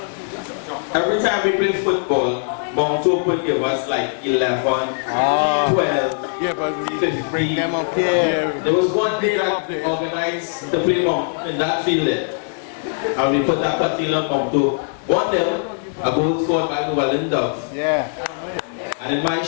every time we play football, Monto would give us like 11, 12, Yeah, but we 15. came up here. There was one day Come that up we there. organized the play in that field there. And we put that particular on Monto. 1-0, a goal scored by Llewellyn Dove. Yeah. And in my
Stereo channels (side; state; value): right; silent; digital silence